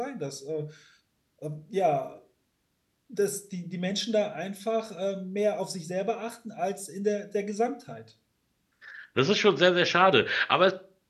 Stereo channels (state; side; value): identical; both; correlation 1.00